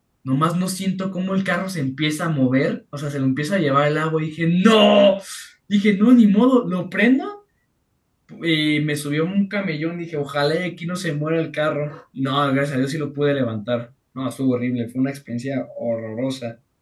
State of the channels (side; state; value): both; identical; correlation 1.00